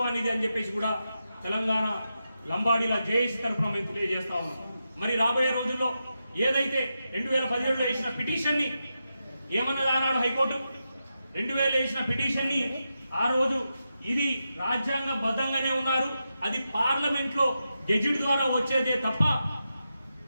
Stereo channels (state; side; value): inverted; both; correlation -0.88